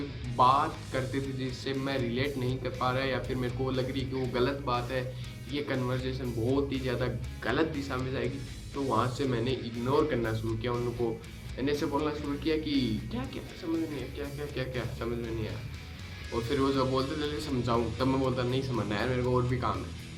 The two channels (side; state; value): both; identical; correlation 1.00